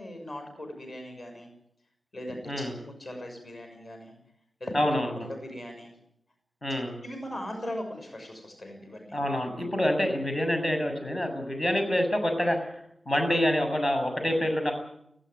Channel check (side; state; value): both; normal; correlation 0.94